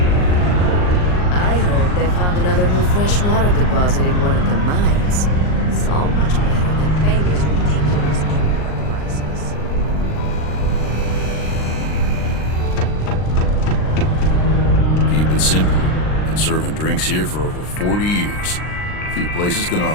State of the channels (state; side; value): late; right; 39 ms